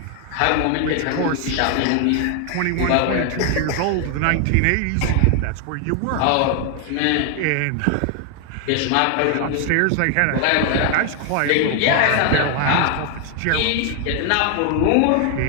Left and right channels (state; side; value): different; both; correlation 0.00